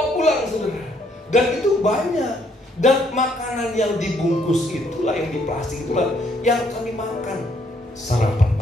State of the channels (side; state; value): both; normal; correlation 0.69